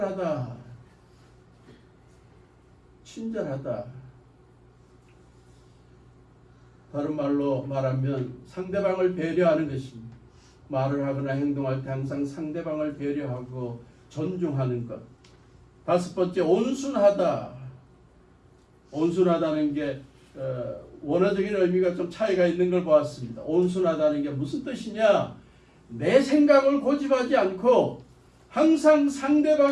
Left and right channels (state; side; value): identical; both; correlation 1.00